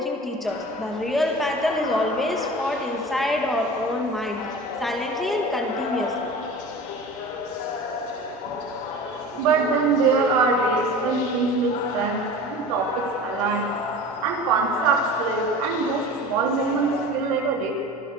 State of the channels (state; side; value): normal; both; correlation 0.36